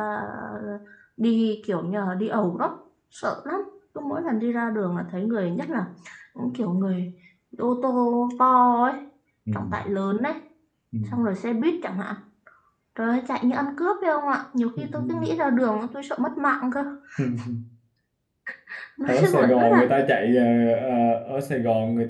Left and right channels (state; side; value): identical; both; correlation 1.00